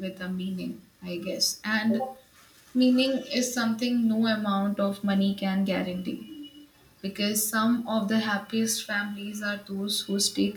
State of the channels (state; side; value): identical; both; correlation 1.00